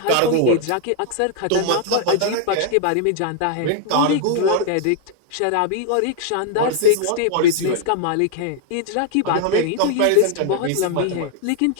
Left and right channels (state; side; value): different; both; correlation 0.00